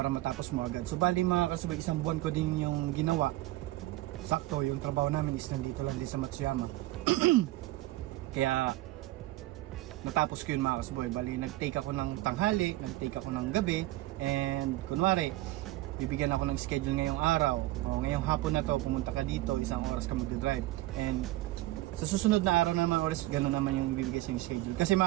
matapos mo agad. So bali mga Karsboy, isang buwan ko din yung ginawa. Sakto, yung trabaho namin is nandito lang din sa Matsuyama. Kaya natapos ko yun mga Karsboy. Bali nag-take ako ng tanghali, nag-take ako ng gabi, and kunwari bibigyan ako ng schedule ngayong araw, o ngayong hapon na to pumunta ka dito, isang oras ka mag-drive, and sa susunod na araw naman oras, gano'n naman yung ibibigay sa yung schedule. Kasi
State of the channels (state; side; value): quieter; left; 17.5 dB